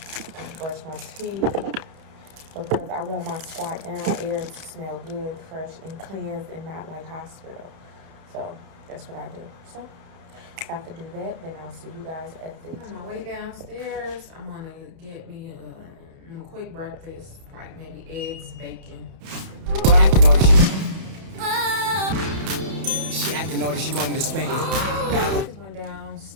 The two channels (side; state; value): left; late; 31 ms